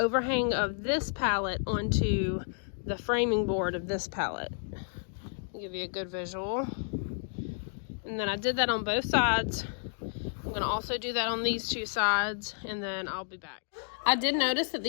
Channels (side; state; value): right; silent; digital silence